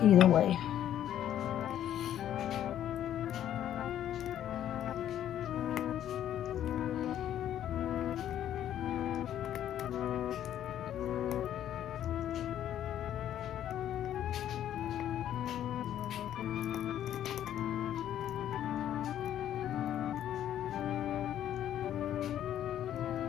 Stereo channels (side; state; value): right; quieter; 11.0 dB